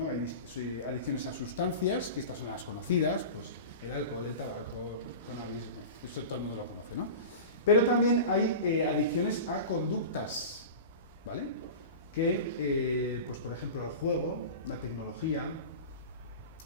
Hay adicciones a sustancias, que estas son las conocidas, pues el alcohol, el tabaco, el cannabis, esto todo el mundo lo conoce, ¿no? Pero también hay adicciones a conductas, ¿vale? Que, pues por ejemplo, el juego, la tecnología,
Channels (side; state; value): both; inverted; correlation -0.31